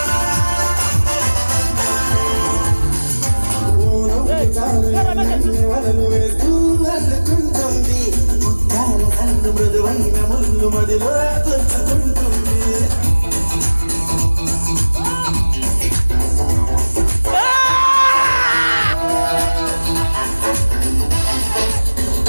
వలలు వేస్తూ అల్లుకుంటుంది ముత్యాల కన్ను మృదువైన ముళ్ళు మదిలో గుచ్చుకుంటుంది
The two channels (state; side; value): inverted; both; correlation -1.00